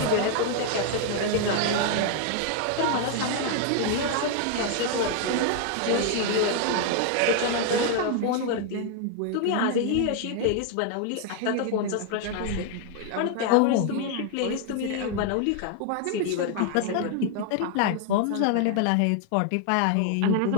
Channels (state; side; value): different; both; correlation 0.00